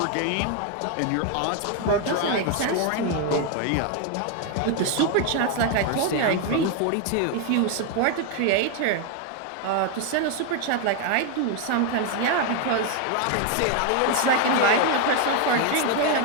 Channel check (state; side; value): different; both; correlation 0.01